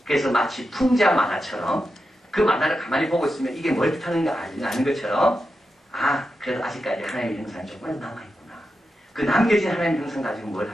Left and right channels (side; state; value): both; normal; correlation 0.89